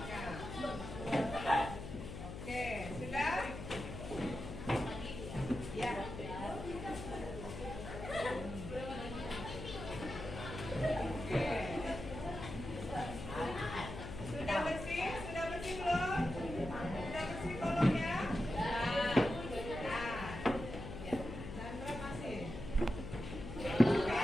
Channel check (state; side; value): noise; left; hum, 8 dB below the sound